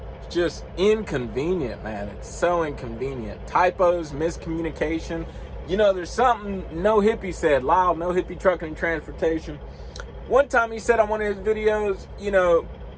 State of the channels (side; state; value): both; identical; correlation 1.00